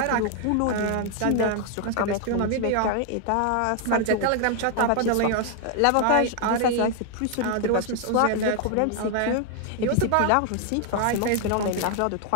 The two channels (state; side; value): different; both; correlation 0.00